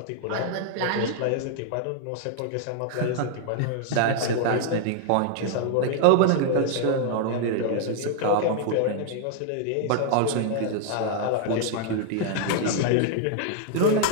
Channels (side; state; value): both; different; correlation 0.00